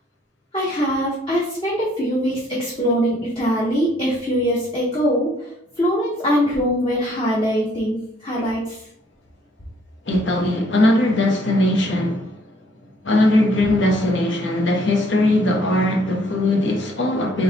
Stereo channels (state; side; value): normal; both; correlation 0.64